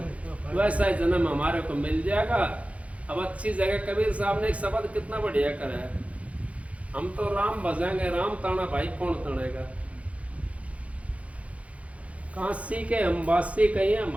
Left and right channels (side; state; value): left; late; 0.065 ms